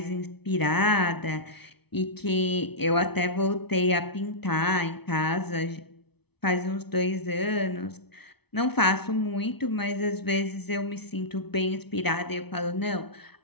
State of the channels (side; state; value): right; late; 0.98 ms